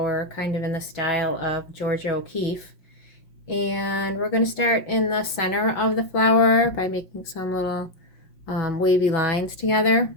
kind of in the style of Georgia O'Keeffe. And we're going to start in the center of the flower by making some little wavy lines together.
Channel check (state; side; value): late; right; 5.6 ms